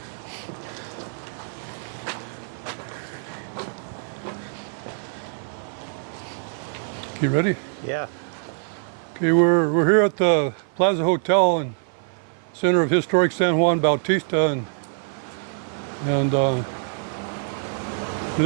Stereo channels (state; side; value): silent; left; 56 dB below the other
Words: You ready? Yeah. Okay, we're here at the Plaza Hotel in center of historic San Juan Bautista, and